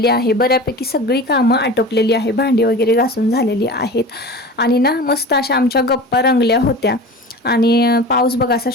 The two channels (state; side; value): normal; both; correlation 0.34